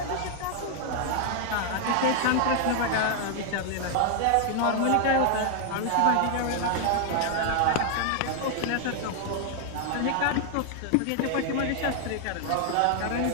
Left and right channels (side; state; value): both; different; correlation 0.00